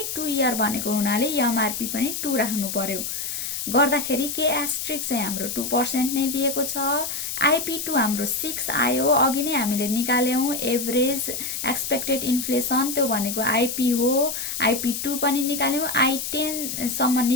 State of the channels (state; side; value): noise; left; hiss, 4 dB below the sound